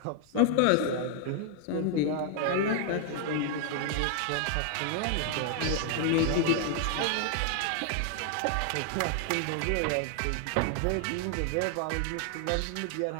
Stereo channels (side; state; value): both; different; correlation 0.00